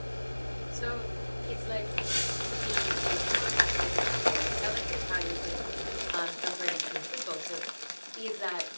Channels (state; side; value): inverted; both; correlation -1.00